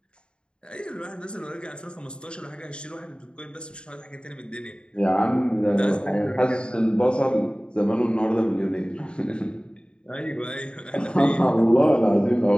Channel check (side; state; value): right; late; 0.052 ms